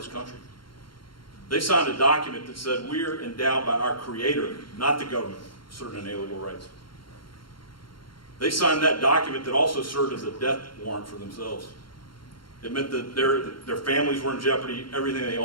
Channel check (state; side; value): late; right; 0.73 ms